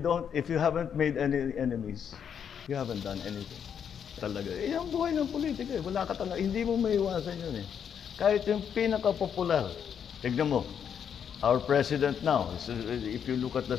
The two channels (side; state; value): right; quieter; 7.9 dB